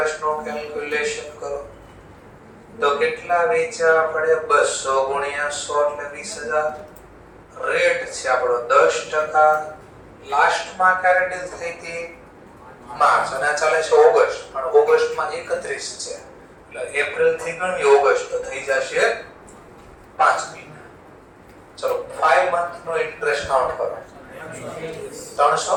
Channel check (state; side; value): identical; both; correlation 1.00